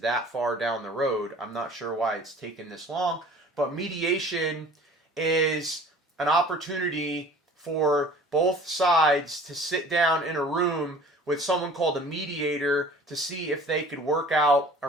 that far down the road. I'm not sure why it's taken this long. But mediation is an opportunity for both sides to sit down in a room with someone called a mediator to see if they could work out a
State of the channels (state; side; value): normal; both; correlation 0.47